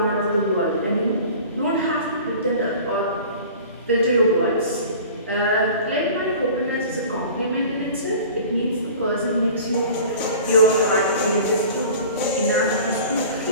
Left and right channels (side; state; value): both; inverted; correlation -0.42